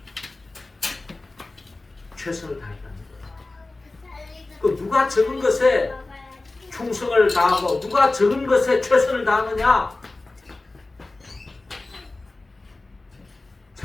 최선을 다했다는 거예요. 그 누가 적은 것에 충성을 다하고 누가 적은 것에 최선을 다하느냐?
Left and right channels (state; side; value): quieter; right; 3.2 dB